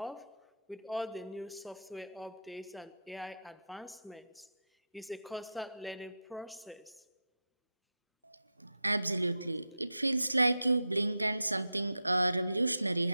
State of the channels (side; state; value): both; inverted; correlation -0.83